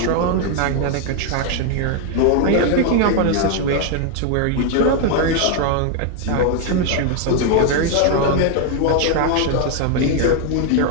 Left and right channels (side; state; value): both; different; correlation 0.00